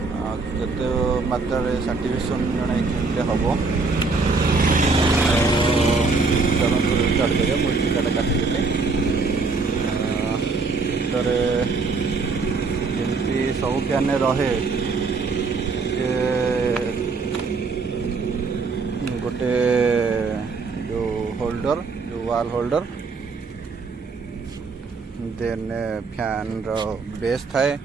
केते मात्रा सर्टिफिकेशन जड़े केमती हम चलते स्टार्ट करिए। मुझे टीकाटा काटिदेली भर जमी सब फैन रहे गोटे जो होल्डर जो वाल होल्डर देन फैन रो बेस थाए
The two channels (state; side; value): quieter; left; 4.2 dB